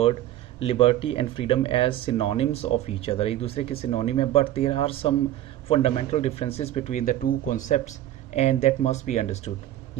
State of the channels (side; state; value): left; quieter; 13.2 dB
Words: liberty and freedom as synonyms of each other. एक दूसरे के सिनोनिम है, but there are some fundamental differences between the two concepts and that must be understood.